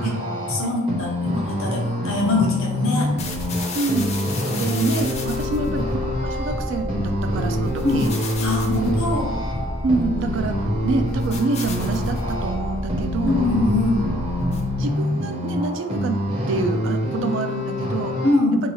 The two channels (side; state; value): both; normal; correlation 0.62